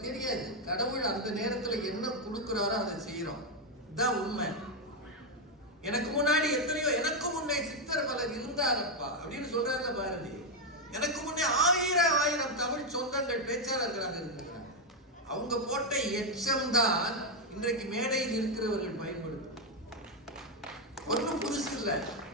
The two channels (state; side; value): normal; both; correlation 0.03